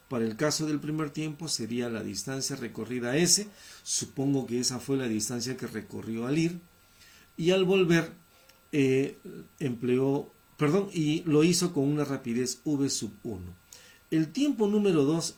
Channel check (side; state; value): both; identical; correlation 1.00